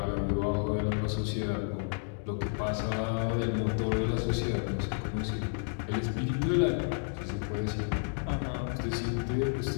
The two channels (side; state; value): right; silent; digital silence